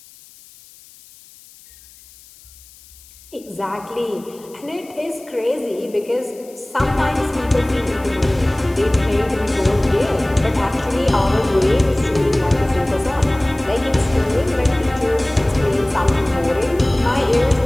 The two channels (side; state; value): left; noise; hiss, 24 dB below the sound